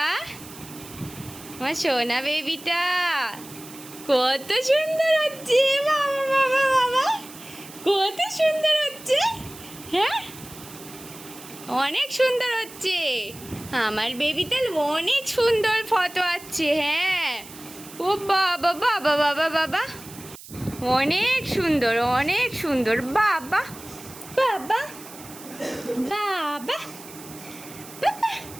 আমার সোনা বেবিটা। কত সুন্দর হচ্ছে, বাবা বাবা বাবা, কত সুন্দর হচ্ছে। হ্যাঁ, অনেক সুন্দর হচ্ছে আমার বেবিতে, অনেক সুন্দর ফটো আসছে। হ্যাঁ, ও বাবা বাবা বাবা বাবা, অনেক সুন্দর, অনেক সুন্দর। বাবা বাবা বাবা বাবা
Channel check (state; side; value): noise; right; hiss, 17 dB below the sound